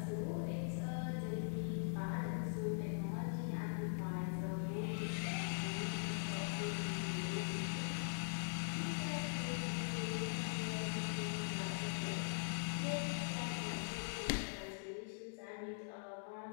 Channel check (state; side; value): silent; right; digital silence